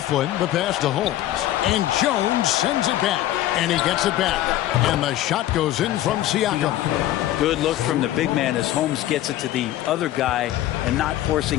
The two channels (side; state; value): right; quieter; 14.0 dB